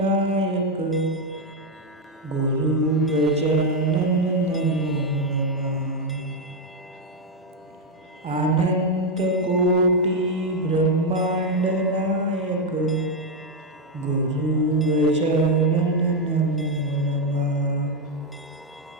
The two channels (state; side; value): normal; both; correlation 0.04